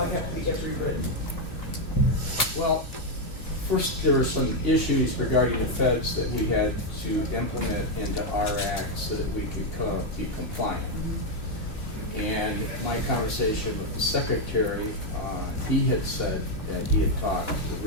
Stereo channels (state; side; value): late; right; 2.8 ms